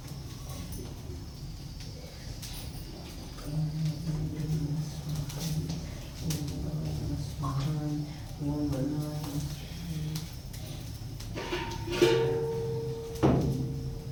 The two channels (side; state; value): both; identical; correlation 1.00